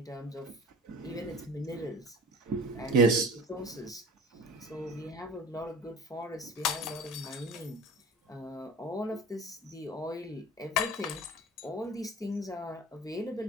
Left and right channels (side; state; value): both; normal; correlation 0.40